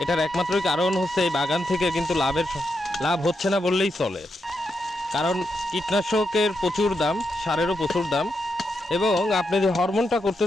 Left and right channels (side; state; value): both; normal; correlation 0.84